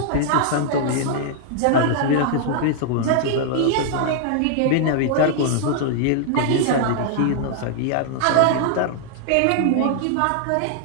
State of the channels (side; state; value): both; different; correlation -0.01